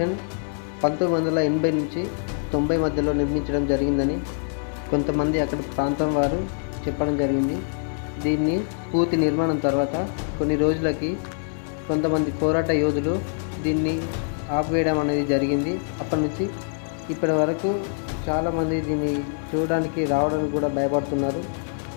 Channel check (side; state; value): right; silent; 62 dB below the other